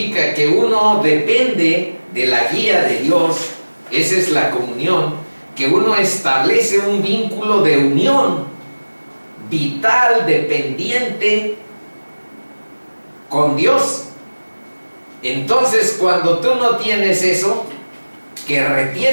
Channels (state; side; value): inverted; both; correlation -1.00